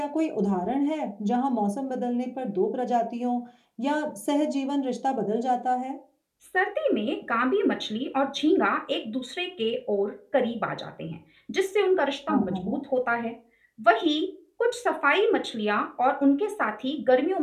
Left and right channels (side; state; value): both; identical; correlation 1.00